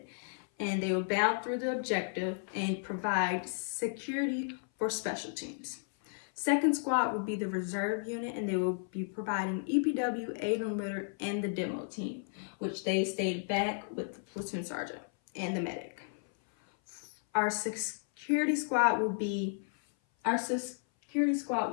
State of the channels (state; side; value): silent; right; 55 dB below the other